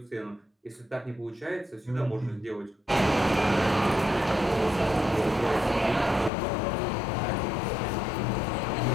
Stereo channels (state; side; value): drops out; right; at 6.3 s